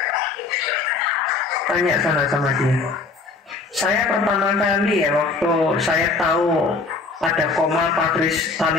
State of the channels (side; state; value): right; quieter; 4.2 dB